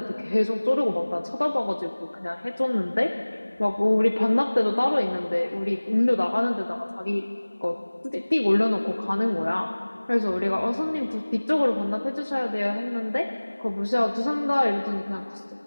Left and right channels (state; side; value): inverted; both; correlation -1.00